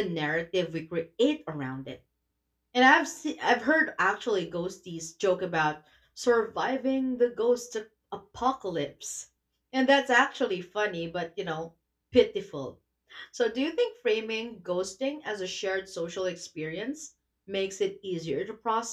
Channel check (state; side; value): identical; both; correlation 1.00